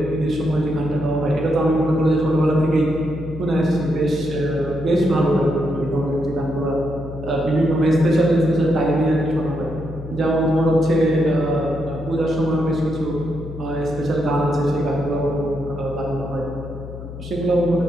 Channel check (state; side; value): noise; left; hum, 11 dB below the sound